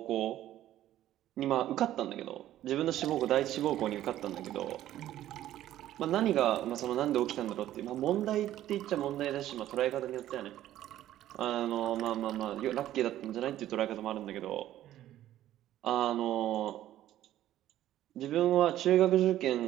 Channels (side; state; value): left; quieter; 13.1 dB